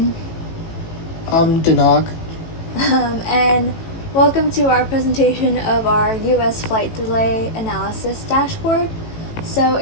Dinog. and welcome to our presentation of our U.S. flight delay analysis dashboard. So,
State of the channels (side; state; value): right; late; 18 ms